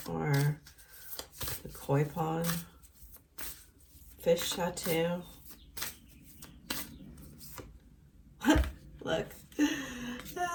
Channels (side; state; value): both; identical; correlation 1.00